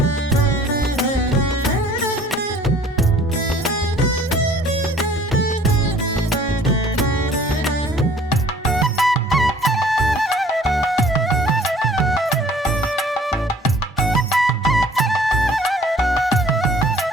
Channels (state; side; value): normal; both; correlation 0.53